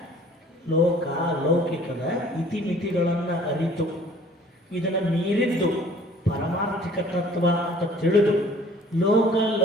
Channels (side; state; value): both; normal; correlation 0.51